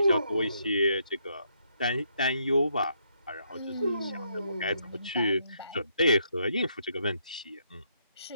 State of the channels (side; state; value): both; inverted; correlation -0.75